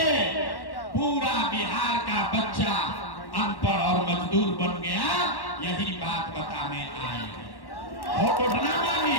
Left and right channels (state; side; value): late; right; 1.1 ms